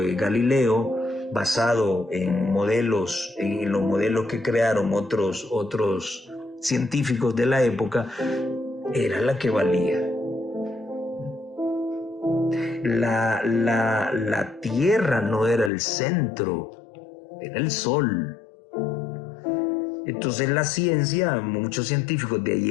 Galileo, basado en los modelos que crearon otros científicos de la época, era la que valía. La tierra no era el centro, era el sol. Entonces la ciencia, muchos científicos de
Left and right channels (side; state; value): right; drops out; at 15.7 s